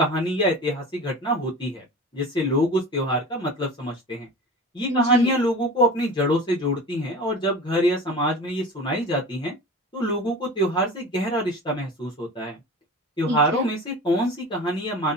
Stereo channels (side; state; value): both; normal; correlation 0.35